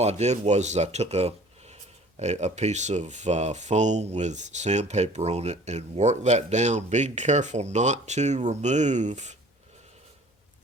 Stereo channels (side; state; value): both; normal; correlation 0.49